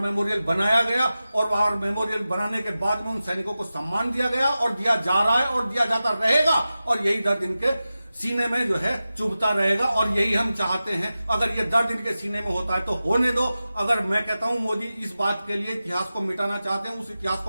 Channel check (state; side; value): inverted; both; correlation -0.94